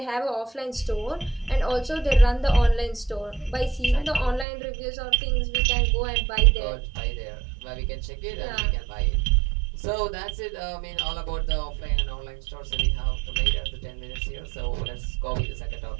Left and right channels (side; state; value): left; drops out; at 4.5 s